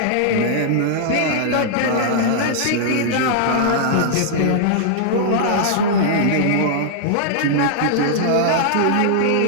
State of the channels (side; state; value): both; different; correlation -0.01